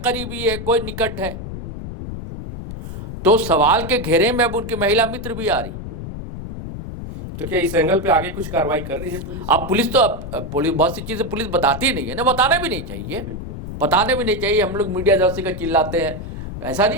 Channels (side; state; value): left; noise; rumble, 8 dB below the sound